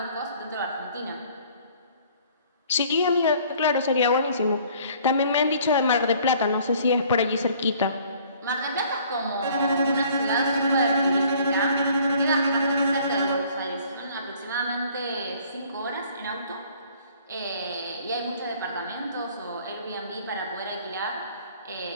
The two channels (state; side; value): inverted; both; correlation -0.56